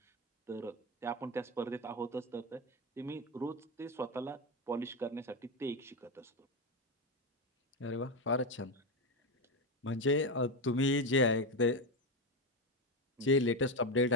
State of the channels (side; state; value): both; normal; correlation 0.12